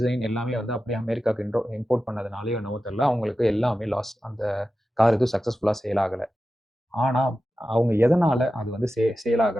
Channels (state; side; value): normal; both; correlation 0.92